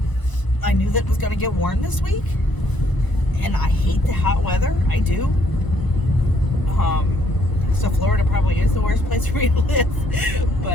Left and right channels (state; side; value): late; right; 1.0 ms